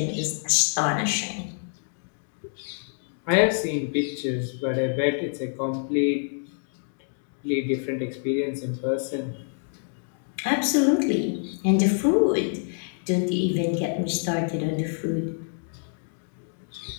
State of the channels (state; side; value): silent; right; 60 dB below the other